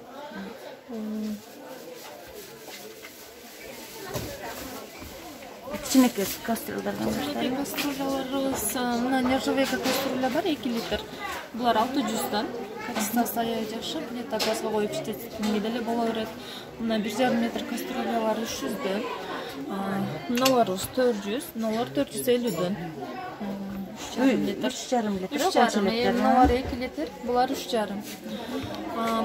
Кичинекей кастрюльдардан баштайбыз. Кастрюляларыбыз мына нержавейка кастрюля бар 2 литр. Булар 600'dan. Качествосы аябай жакшы. Плита газга коюп иштетингенге деле боло берет. Мына 1,5 метр кастрюлялар 300'dan. Мыналарыбыз 400, мыналар 450'dan. 3,5 литр. 3,5. Мыналар 2 литр, булар 3,5.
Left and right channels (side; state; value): both; identical; correlation 1.00